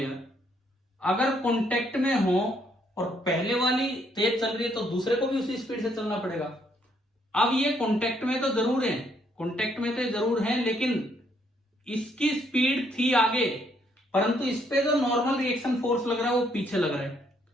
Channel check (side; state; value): both; normal; correlation 0.70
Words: अगर कांटेक्ट में हो और पहले वाली तेज चल रही है तो दूसरे को भी उसी स्पीड से चलना पड़ेगा। अब ये कांटेक्ट में तो जरूर है, कांटेक्ट में तो जरूर है, लेकिन इसकी स्पीड थी आगे, परंतु इस पे जो नॉर्मल रिएक्शन फोर्स लग रहा है वो पीछे लग रहा है,